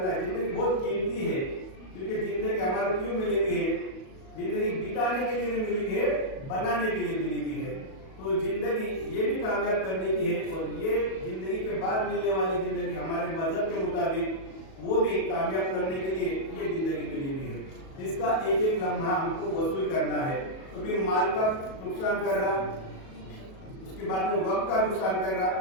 है, जिंदगी बहुत कीमती है, क्योंकि जिंदगी हमारा क्यों मिली हुई है, जिंदगी बिताने के लिए नहीं मिली है, बनाने के लिए मिली हुई है। तो जिंदगी ये भी कामयाब करने की है, और ये जिंदगी के बाद मिलने वाली जिंदगी हमारे मजहब के मुताबिक वो भी कामयाब करने के लिए ये जिंदगी मिली हुई है। इसका एक एक लम्हा हमको वसूल करना है। तो फिर माल का नुकसान कर रहा, उसके बाद में वक्त का नुकसान कर रहा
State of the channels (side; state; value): right; late; 37 ms